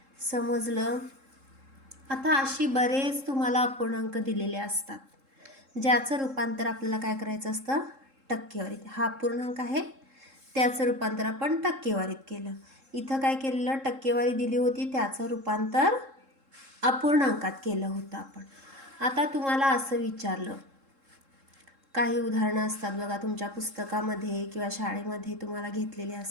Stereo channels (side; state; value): left; late; 3.7 ms